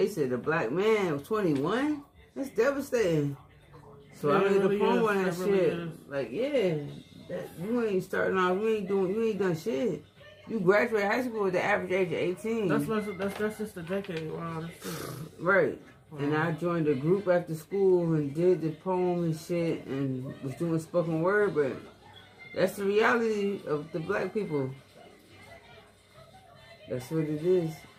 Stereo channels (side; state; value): both; identical; correlation 1.00